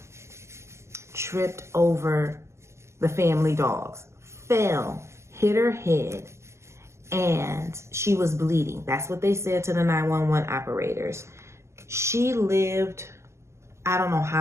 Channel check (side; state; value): left; late; 0.13 ms